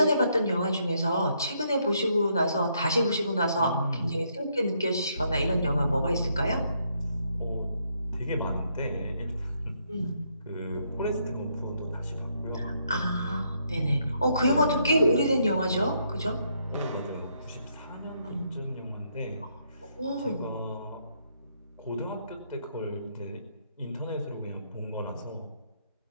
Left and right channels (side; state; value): both; inverted; correlation -0.74